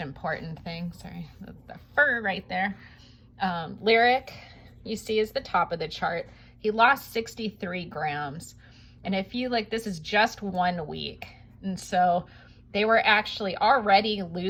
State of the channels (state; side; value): identical; both; correlation 1.00